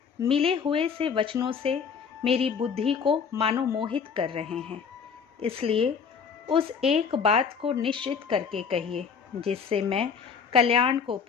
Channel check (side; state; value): right; quieter; 6.3 dB